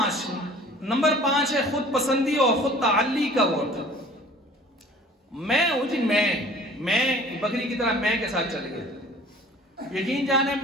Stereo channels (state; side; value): normal; both; correlation 0.49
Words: 5 ہے خود پسندی اور خود تعلی کا ووٹ۔ میں ہوں جی، میں بکری کی طرح میں کے ساتھ چل گیا، یقین جانے